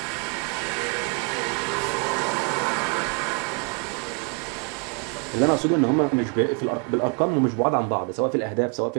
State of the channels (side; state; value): left; quieter; 35.9 dB